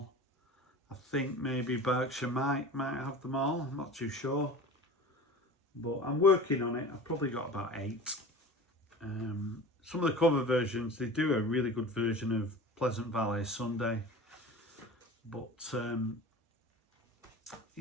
I think maybe Berkshire might have them all. I'm not too sure. But I'm working on it. I've probably got about 8. Some of the cover versions, they do a really good version of Pleasant Valley Sunday. But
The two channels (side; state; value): both; normal; correlation 0.37